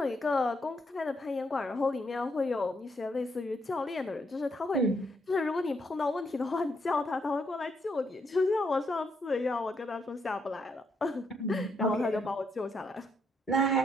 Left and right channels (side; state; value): both; normal; correlation 0.76